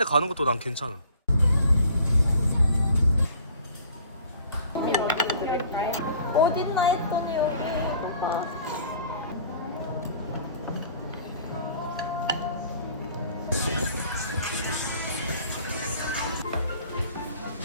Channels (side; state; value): both; inverted; correlation -0.51